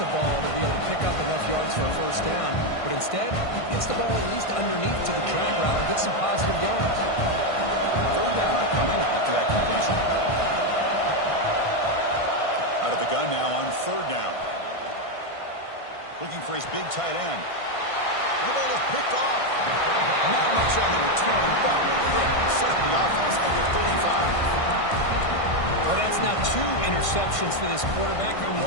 ball to be able to pick up enough yards for a first down. But instead, he gets the ball at least underneath to the drag route and gets some positive yards. Third down upcoming after that completion. Out of the gun now on third down. Looking for his big tight end. The ball is picked off. Not much on the return, but hit. Set up the offense at the 35. Well, that's now 2 interceptions for this quarterback, and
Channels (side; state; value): right; late; 1.5 ms